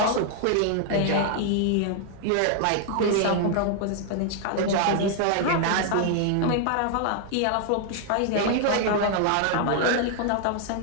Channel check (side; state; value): both; different; correlation 0.00